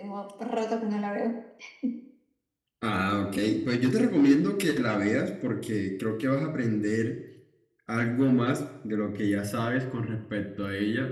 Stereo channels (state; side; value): identical; both; correlation 1.00